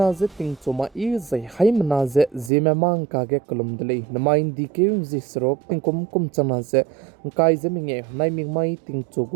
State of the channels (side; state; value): left; drops out; at 2.5 s